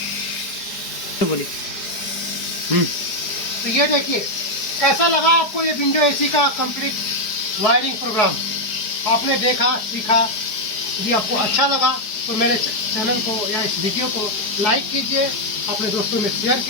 तो बोलिए। तो ये देखिए कैसा लगा आपको ये विंडो एसी का कंप्लीट वायरिंग प्रोग्राम। आपने देखा, सीखा। यदि आपको अच्छा लगा तो मेरे चैनल को या इस वीडियो को लाइक कीजिए, अपने दोस्तों में शेयर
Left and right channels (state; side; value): late; right; 4.8 ms